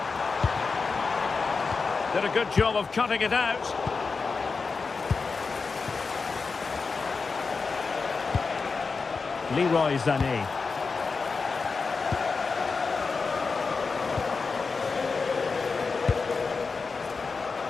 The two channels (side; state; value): right; quieter; 4.6 dB